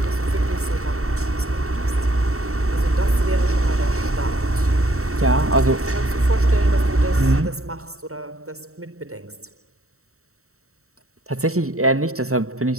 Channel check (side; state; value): left; late; 0.64 ms